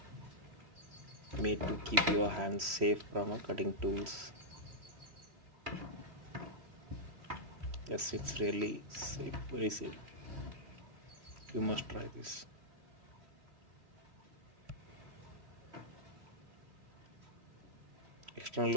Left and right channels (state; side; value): late; left; 3.1 ms